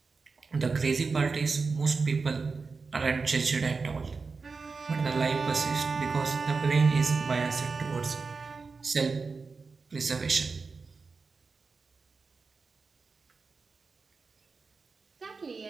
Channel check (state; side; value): quieter; left; 4.5 dB